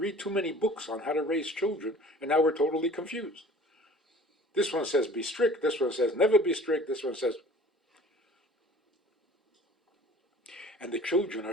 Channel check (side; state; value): both; normal; correlation 0.47